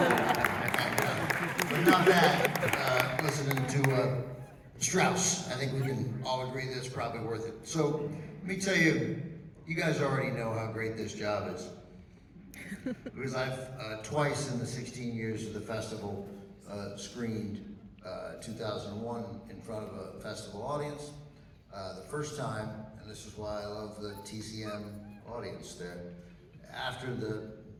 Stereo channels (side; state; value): both; identical; correlation 1.00